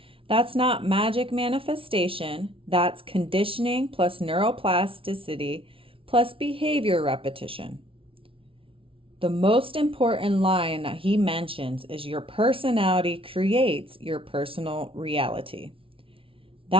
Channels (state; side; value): late; left; 0.26 ms